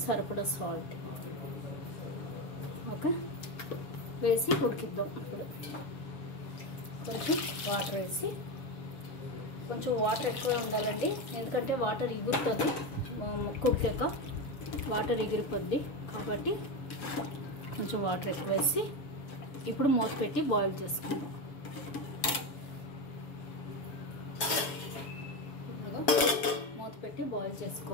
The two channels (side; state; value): right; late; 7.2 ms